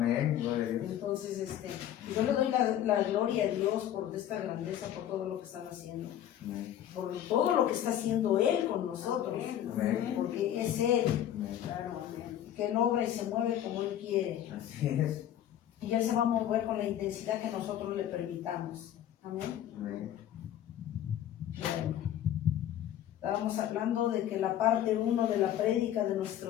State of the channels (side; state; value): right; quieter; 11.2 dB